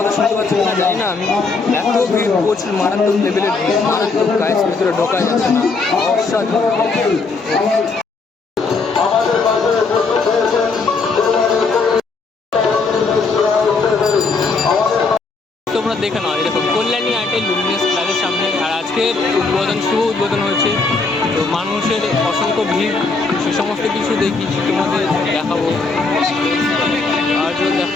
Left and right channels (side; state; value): right; quieter; 4.1 dB